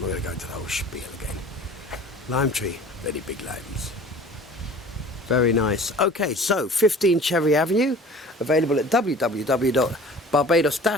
going to go into the whole spiel again. Lime tree, very big limes. Very nice. Okay, so 15 Cherry Avenue, available at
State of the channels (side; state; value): both; normal; correlation 0.45